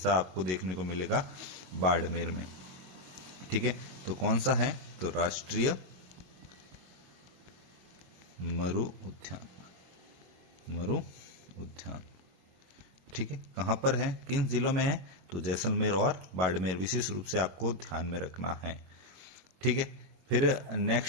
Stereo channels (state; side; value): late; left; 22 ms